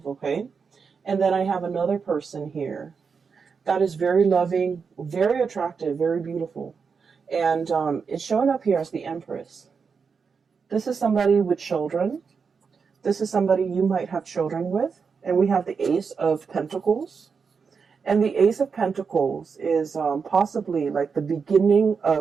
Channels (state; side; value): quieter; left; 5.6 dB